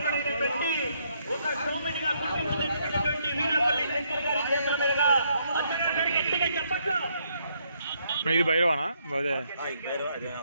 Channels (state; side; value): inverted; both; correlation -0.73